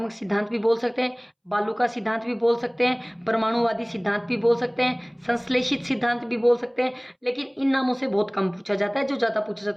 सिद्धांत भी बोल सकते हैं, बालू का सिद्धांत भी बोल सकते हैं, परमाणुवादी सिद्धांत भी बोल सकते हैं, संश्लेषित सिद्धांत भी बोल सकते हैं, लेकिन इन नामों से बहुत कम पूछा जाता है, जो ज़्यादा पूछा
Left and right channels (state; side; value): identical; both; correlation 1.00